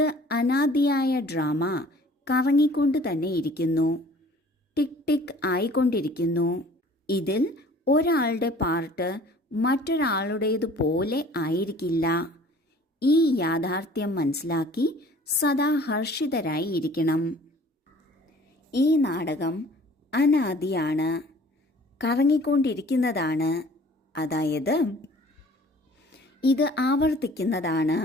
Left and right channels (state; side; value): normal; both; correlation 0.50